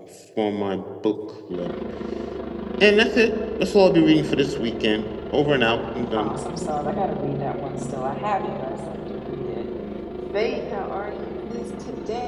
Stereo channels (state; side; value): identical; both; correlation 1.00